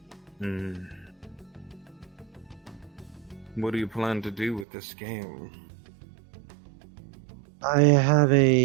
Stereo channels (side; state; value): left; drops out; at 4.7 s